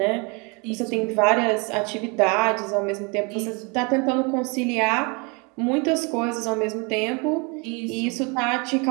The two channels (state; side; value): quieter; left; 30.9 dB